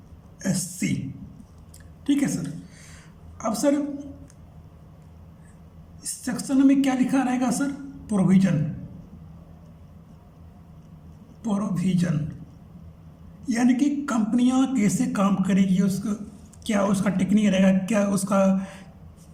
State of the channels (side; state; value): both; identical; correlation 1.00